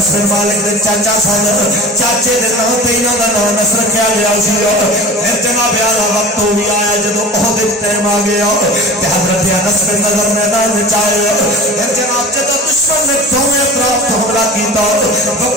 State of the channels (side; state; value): both; normal; correlation 0.37